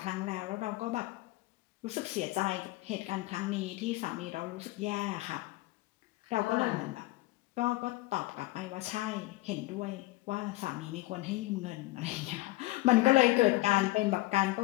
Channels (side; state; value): right; quieter; 19.6 dB